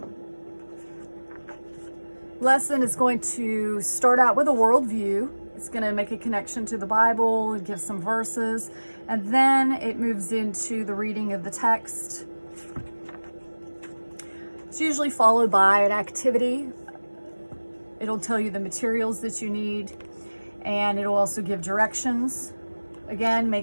Lesson is going to start out with a worldview. It's going to make a connection to the Bible, give some verses, and then it moves into the reading of the text. It's usually followed by an activity. It'll tell you the materials that you need, and it'll also give directions. Again,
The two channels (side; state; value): both; inverted; correlation -1.00